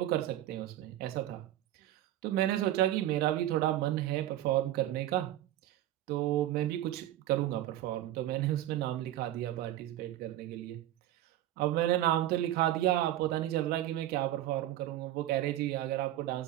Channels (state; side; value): quieter; left; 13.5 dB